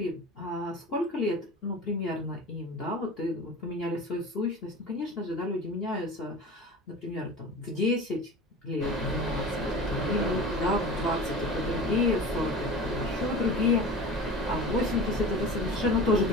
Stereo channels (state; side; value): normal; both; correlation 0.35